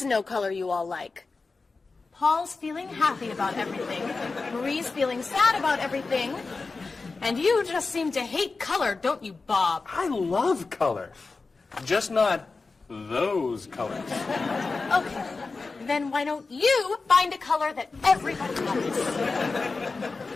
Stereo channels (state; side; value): quieter; right; 4.0 dB